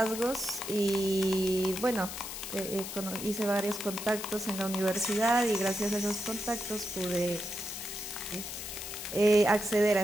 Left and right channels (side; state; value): left; noise; hiss, 8 dB below the sound